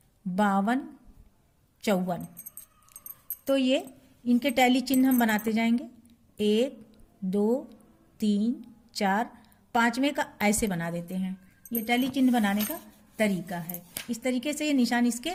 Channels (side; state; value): both; identical; correlation 1.00